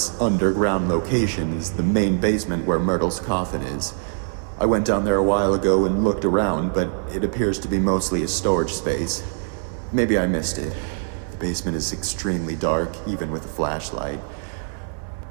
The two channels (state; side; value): silent; left; digital silence